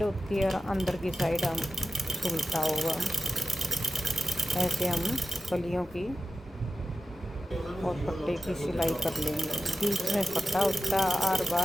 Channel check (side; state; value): both; normal; correlation 0.93